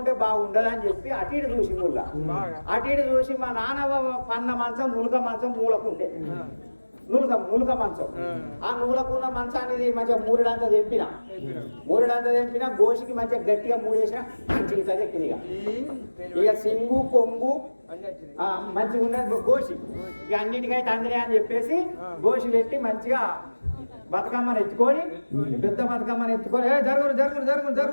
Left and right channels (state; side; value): inverted; both; correlation -1.00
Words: బాగుండదని చెప్పి అటు ఇటు చూసి అటు ఇటు చూసి మా నాన్న పన్న మంచం నులక మంచం మూలకుండే నులక మంచం. ఆ నులకున్న మంచాన్ని మంచిగా మూరెడంతా తెంపిన గోషికి మంచిగా గట్టిగా మూడేసిన మంచిగా ఎక్కింది. ఇక సింగు కొంగు మంచిగా ఉన్నది గోషి. ఇక అన్నిటికైతే అందరే అని చెప్పేసి గోషి పెట్టి మంచిగా బతుకమ్మను ఎత్తుకొని పెద్ద బతుకమ్మను ఎత్తుకొని